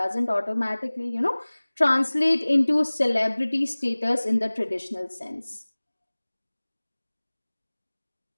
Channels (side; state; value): both; inverted; correlation -1.00